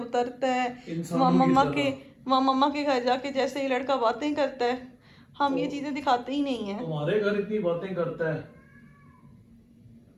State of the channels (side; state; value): both; identical; correlation 1.00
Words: है, इंसानों की मम्मा के घर जाके जैसे ये लड़का बातें करता है, हम ये चीजें दिखाते ही नहीं है। तुम्हारे घर इतनी बातें करता है,